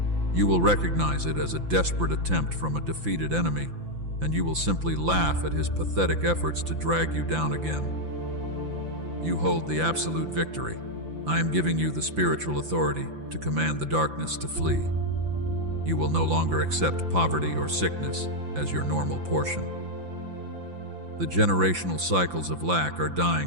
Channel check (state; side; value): late; left; 5.9 ms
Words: You will recognize it as a desperate attempt from a defeated enemy, and you will simply laugh at his pathetic efforts to drag you down again. You hold the absolute victory. I am giving you the spiritual authority to command the darkness to flee. You will no longer accept poverty or sickness as your normal portion. The generational cycles of lack are